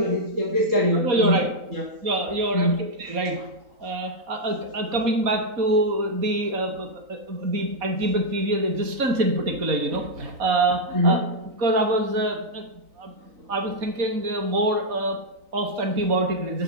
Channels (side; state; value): left; late; 3.9 ms